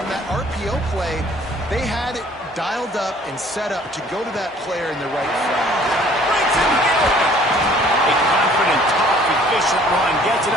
that RPO play, they had it dialed up and set up to go to that player in the right front. Breaks in the open. A confident, tough, efficient run gets it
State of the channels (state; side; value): normal; both; correlation 0.55